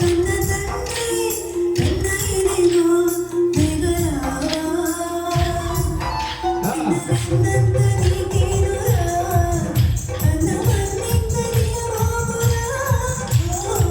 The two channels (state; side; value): identical; both; correlation 1.00